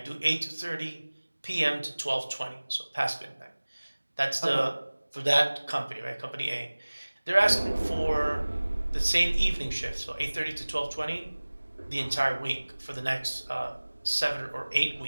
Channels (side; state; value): both; inverted; correlation -1.00